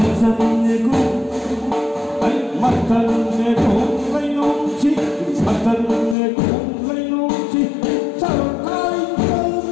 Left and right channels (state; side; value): drops out; right; at 6.2 s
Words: chân nghe cũng anh mất chân nghe cũng lấy nông chi mất chân nghe cũng lấy nông chi sao ai cứ